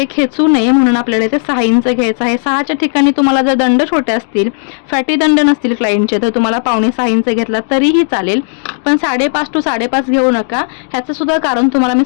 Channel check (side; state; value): right; silent; digital silence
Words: खेचू नये म्हणून आपल्याला इथे 6 इंच घ्यायचा आहे. 6च्या ठिकाणी तुम्हाला जर दंड छोटे असतील, फॅटी दंड नसतील क्लायंटचे तर तुम्हाला 5.5-6 इंच घेतला तरीही चालेल, पण 5.5 to 5.5 घेऊ नका. ह्याचं सुद्धा कारण तुम्हाला मी